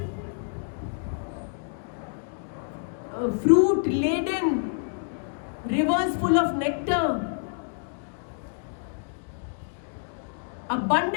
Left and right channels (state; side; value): silent; right; digital silence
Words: fruit laden, rivers full of nectar,